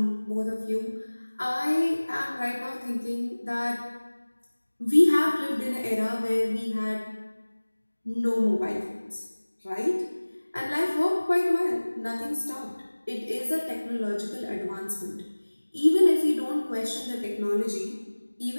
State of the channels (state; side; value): inverted; both; correlation -1.00